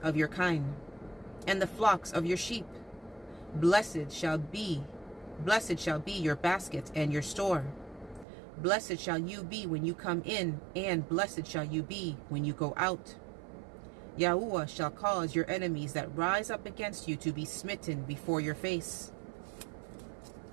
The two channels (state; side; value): drops out; left; at 8.2 s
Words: of your kind, and the flocks of your sheep. Blessed shall be your basket and your store. Blessed shall you be when you come in, and blessed shall you be when you go out. Yahuwah shall cause your enemies that rise up against you to be smitten before your face.